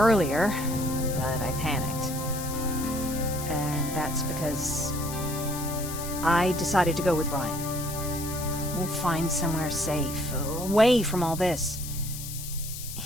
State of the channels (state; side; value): noise; left; hiss, 9 dB below the sound